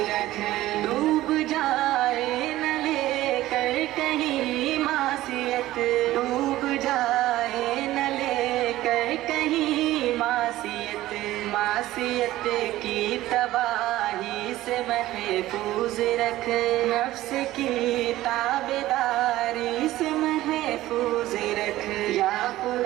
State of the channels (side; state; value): left; quieter; 15.7 dB